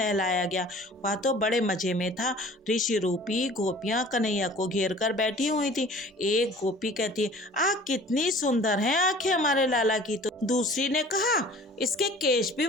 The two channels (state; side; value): normal; both; correlation 0.47